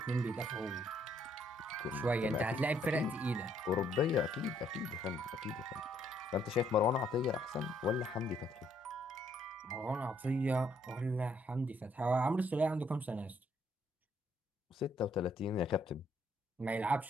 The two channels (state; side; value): normal; both; correlation 0.69